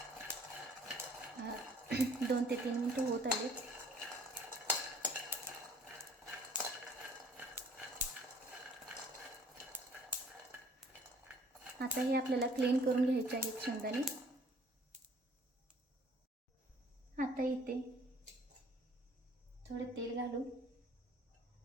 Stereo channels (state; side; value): normal; both; correlation 0.56